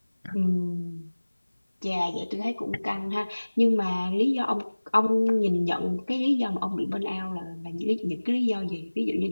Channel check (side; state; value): both; inverted; correlation -1.00